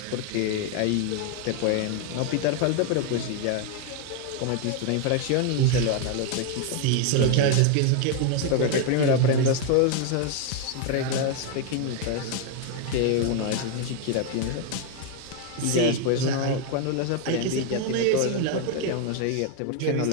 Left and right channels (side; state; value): both; different; correlation 0.01